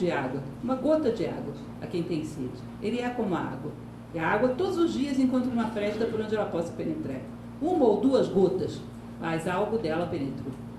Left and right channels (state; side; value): identical; both; correlation 1.00